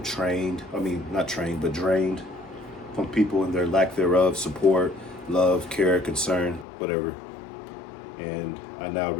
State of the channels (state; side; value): drops out; right; at 6.7 s